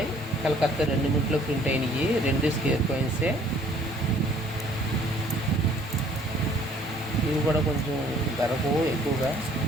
కలకత్తా 2 మినిట్లో ప్రింట్ అయినాయి. 2 స్క్వేర్ కాయిన్సే. ఇవి కూడా కొంచెం ధరకు ఎక్కువగా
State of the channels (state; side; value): normal; both; correlation 0.58